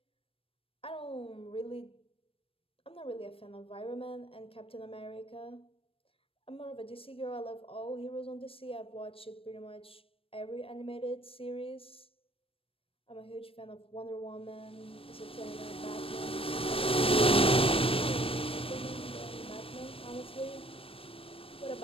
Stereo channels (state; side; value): late; right; 0.27 ms